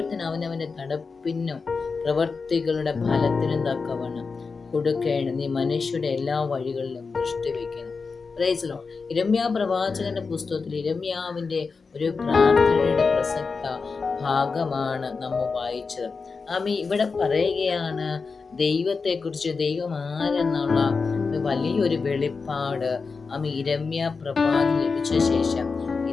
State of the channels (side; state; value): right; quieter; 4.7 dB